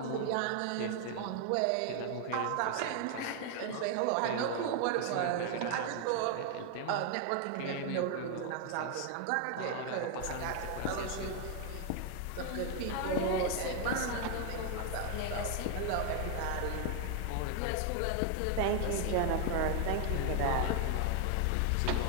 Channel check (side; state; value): both; different; correlation 0.00